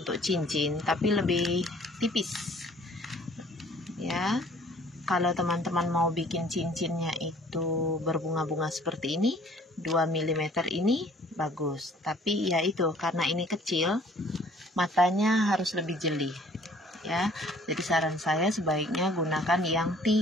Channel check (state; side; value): normal; both; correlation 0.56